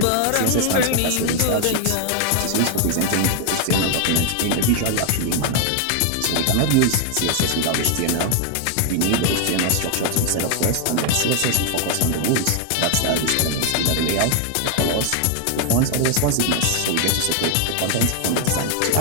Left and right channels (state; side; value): different; both; correlation 0.00